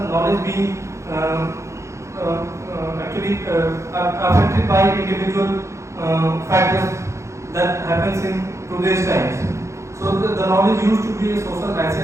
knowledge being actually affected by individual factors that happens in today's times. So the knowledge used to be a social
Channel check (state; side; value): late; left; 0.14 ms